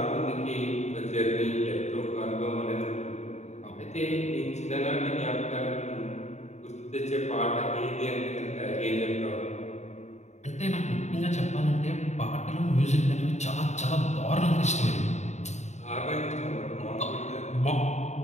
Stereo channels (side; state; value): right; late; 0.33 ms